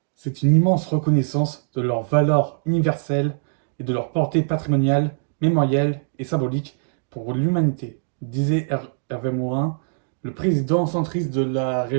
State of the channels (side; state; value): left; silent; digital silence